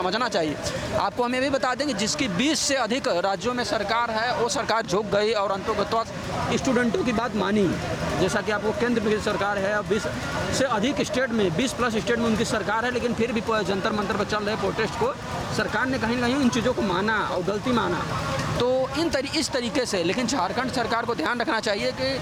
चाहिए। आपको हम ये भी बता दें कि जिसकी 20 से अधिक राज्यों में सरकार है, वो सरकार झुक गई और अंततः स्टूडेंटों की बात मानी। जैसा कि आपको केंद्र की सरकार है, अब 20 से अधिक स्टेट में, 20 प्लस स्टेट में उनकी सरकार है, लेकिन फिर भी जंतर मंतर पर चल रहे प्रोटेस्ट को सरकार ने कहीं ना कहीं इन चीज़ों को माना और गलती माना। तो इस तरीके से, लेकिन झारखंड सरकार को ध्यान रखना चाहिए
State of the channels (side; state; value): both; identical; correlation 1.00